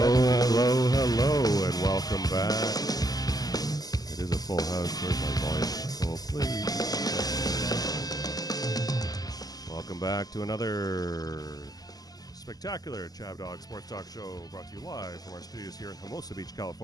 and welcome back. It is a full house. Where's my volume? Oh, please. Welcome back to another spectacular Chav Dog Sports Talk Show brought to you live from our studios here in Hermosa Beach,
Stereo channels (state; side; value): late; right; 0.18 ms